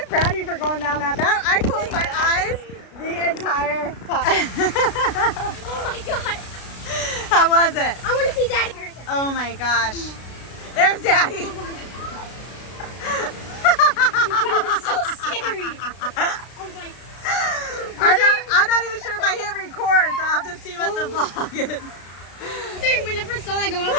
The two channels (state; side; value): late; right; 33 ms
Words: proud of you for going down that. I closed my eyes the entire time. Oh my god! How was it? I want to see Daddy. Oh my gosh. There's Daddy. It's so scary. I was like, I'm not even sure if I hit record, so I'll have to see what the vlog is. when I first saw that go up,